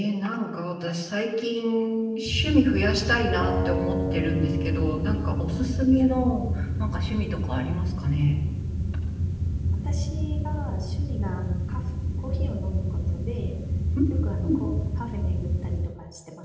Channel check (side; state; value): both; identical; correlation 1.00